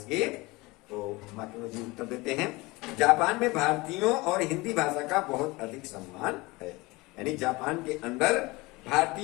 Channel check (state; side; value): quieter; right; 22.8 dB